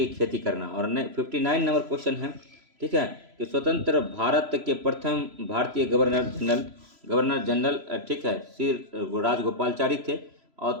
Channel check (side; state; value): left; late; 3.0 ms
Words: खेती करना। और 59 नंबर क्वेश्चन है, ठीक है, कि स्वतंत्र भारत के प्रथम भारतीय गवर्नर जनरल ठीक है श्री राजगोपालचारी थे। और